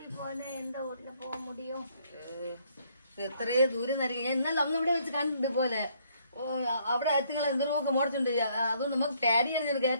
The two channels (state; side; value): inverted; both; correlation -0.67